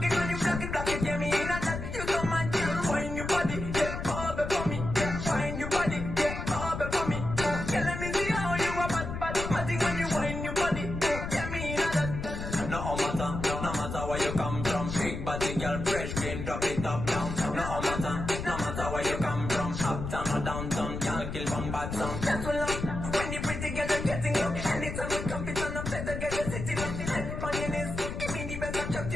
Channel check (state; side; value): noise; left; rumble, 5 dB below the sound